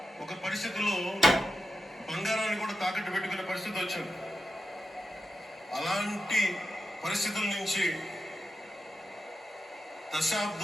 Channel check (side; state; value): both; normal; correlation 0.90